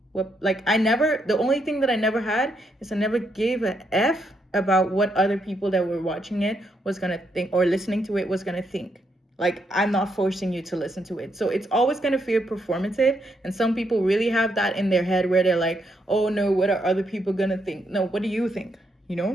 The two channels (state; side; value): normal; both; correlation 0.77